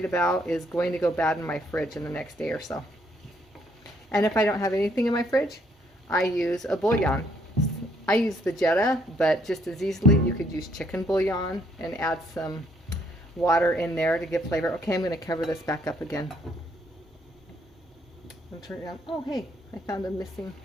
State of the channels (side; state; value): both; normal; correlation 0.68